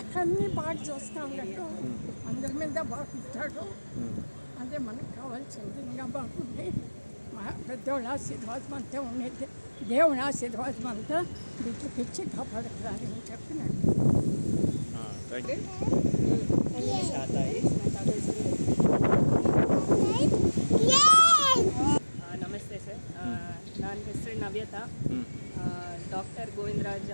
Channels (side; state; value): both; inverted; correlation -1.00